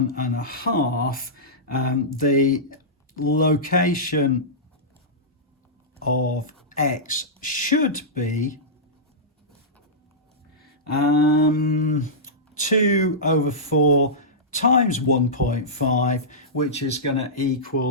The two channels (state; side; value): normal; both; correlation -0.14